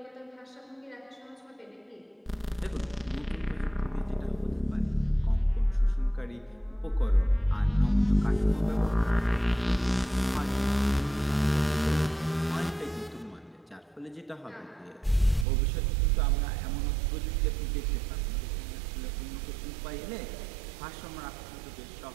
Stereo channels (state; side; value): drops out; left; at 15.5 s